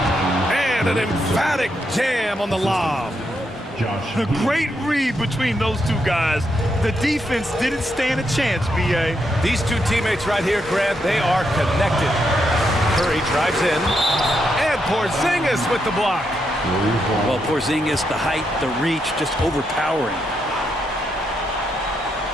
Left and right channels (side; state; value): both; normal; correlation 0.81